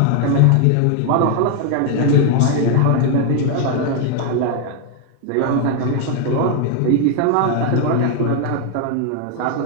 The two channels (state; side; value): different; both; correlation 0.00